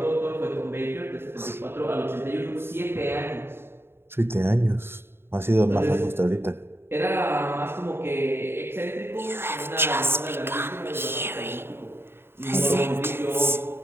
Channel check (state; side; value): late; left; 0.11 ms